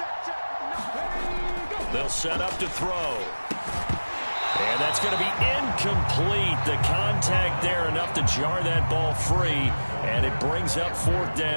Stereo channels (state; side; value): inverted; both; correlation -1.00